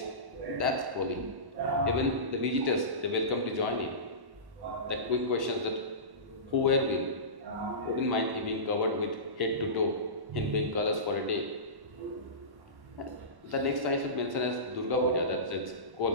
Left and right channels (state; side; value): late; left; 1.1 ms